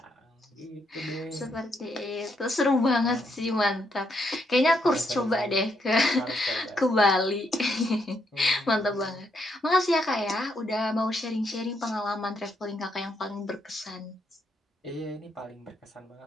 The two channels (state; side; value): normal; both; correlation 0.77